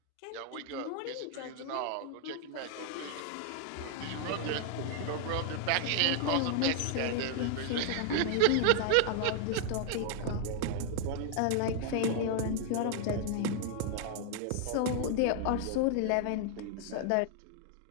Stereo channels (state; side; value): different; both; correlation 0.00